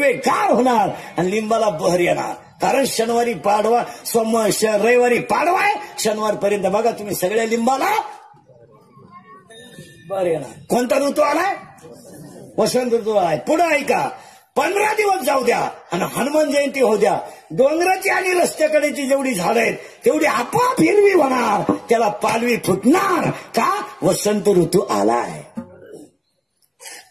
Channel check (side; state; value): both; identical; correlation 1.00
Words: गार होणार आणि लिंबाला बहर येणार. कारण शनिवारी पाडवा, रविवारी पाडवा आहे, शनिवारपर्यंत बघा तुम्ही सगळ्या लिंबाला बर येणार. कोणता ऋतू आलाय? वसंत ऋतू आलाय. पुढे ऐका, 15 दिवस जाऊ द्या आणि हनुमान जयंती होऊ द्या. डोंगराची आणि रस्त्याकडेची जेवढी झाडं आहेत तेवढी आपोआप हिरवी होणार, त्याला पालवी फुटणार. का? वसंत ऋतू आलाय.